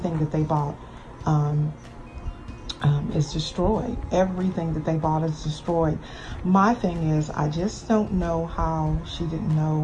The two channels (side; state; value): both; identical; correlation 1.00